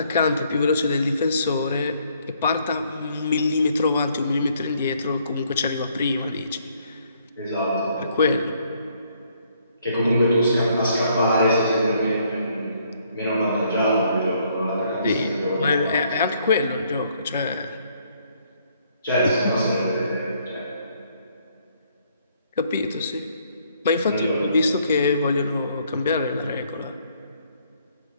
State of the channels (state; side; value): inverted; both; correlation -0.68